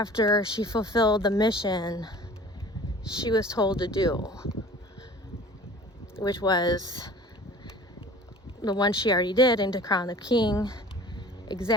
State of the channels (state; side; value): normal; both; correlation 0.45